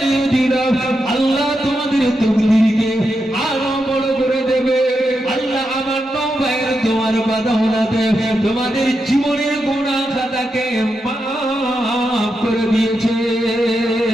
দিলাম আল্লাহ তোমাদের তকদীরকে আরো বড় করে দেবে আল্লাহ আমার নওয়াবের তোমার বাদাওলাতে তোমাদের জীবনের গুনাহ খাতাকে মাফ করে দিয়েছে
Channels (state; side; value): normal; both; correlation 0.86